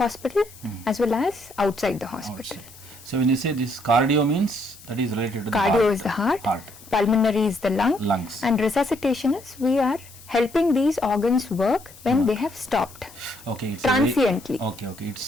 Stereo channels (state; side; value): noise; left; hiss, 21 dB below the sound